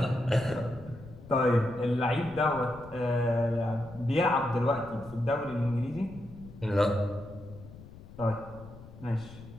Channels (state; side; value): noise; left; rumble, 17 dB below the sound